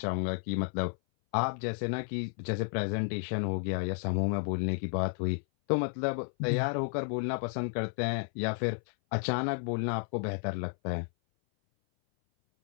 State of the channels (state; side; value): silent; right; 56 dB below the other